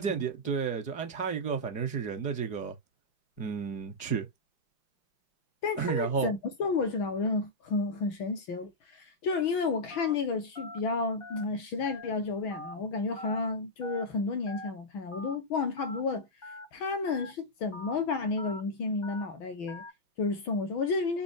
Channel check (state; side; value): late; right; 6.1 ms